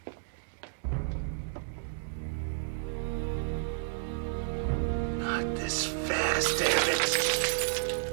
Not this fast, damn it.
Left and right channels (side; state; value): left; silent; digital silence